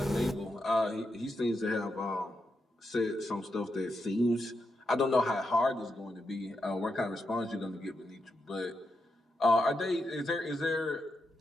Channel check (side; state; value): both; normal; correlation 0.85